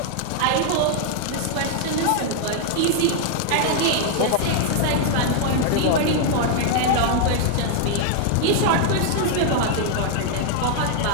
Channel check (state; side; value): different; both; correlation 0.00